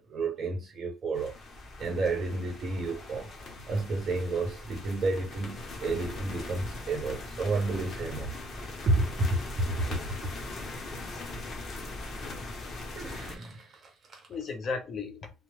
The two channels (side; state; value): both; normal; correlation 0.65